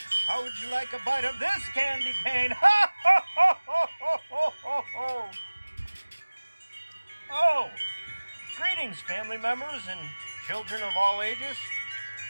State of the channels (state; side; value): inverted; both; correlation -1.00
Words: how would you like a bite of this candy cane? Ha ha ha ha ha ha ha ha! Oh, greetings, family members and children of all ages.